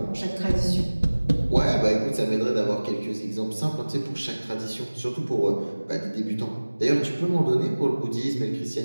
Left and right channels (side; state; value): both; inverted; correlation -1.00